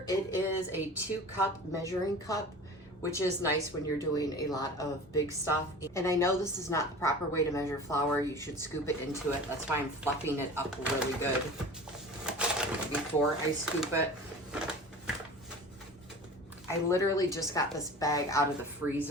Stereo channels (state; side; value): normal; both; correlation 0.38